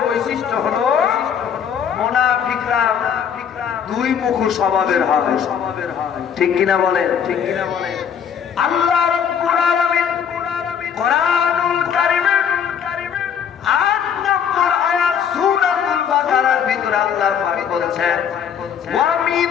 বৈশিষ্ট্য হলো মুনাফিকরা দুই মুখী স্বভাবের হবে। ঠিক কিনা বলেন? ঠিক কিনা বলেন? আল্লাহ রাব্বুল আলামিন কোরআনুল কারীমের 8 নম্বর আয়াত সূরাতুল বাকারার ভিতরে আল্লাহ পাক বলেছেন, ওয়া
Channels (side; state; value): right; quieter; 7.9 dB